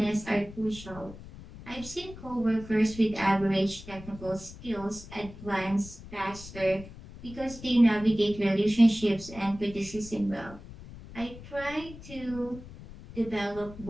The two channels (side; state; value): left; noise; rumble, 15 dB below the sound